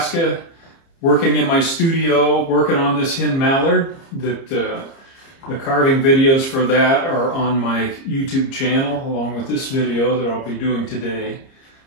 working in my studio, working on this hen mallard. The carving videos for that are on my YouTube channel, along with this video that I'll be doing today.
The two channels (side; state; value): right; late; 30 ms